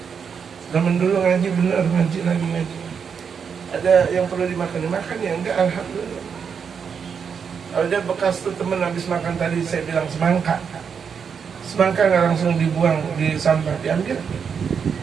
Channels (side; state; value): left; quieter; 6.6 dB